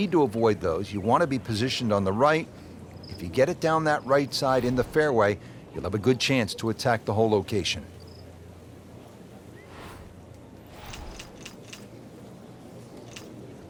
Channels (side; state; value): both; identical; correlation 1.00